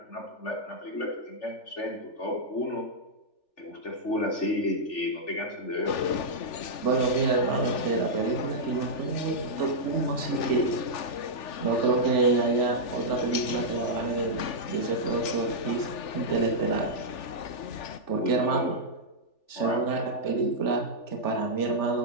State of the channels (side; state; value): right; late; 3.4 ms